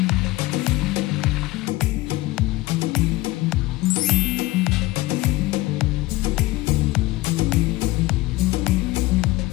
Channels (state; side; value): quieter; right; 19.3 dB